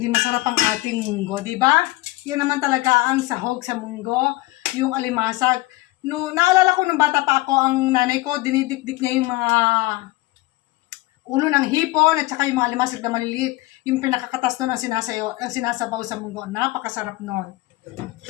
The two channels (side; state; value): right; quieter; 19.9 dB